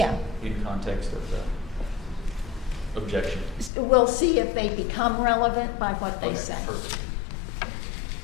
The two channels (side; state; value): right; drops out; at 3.7 s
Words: in context of the objection. we'll see if they become relevant by what they Okay, say. perfect.